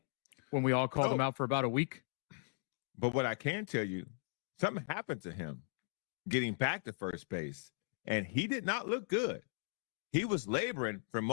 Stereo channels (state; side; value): silent; right; digital silence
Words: when we all called him out for about a week? But what I can tell you, something happened to him getting back to first base, and he did not look good. He was laboring for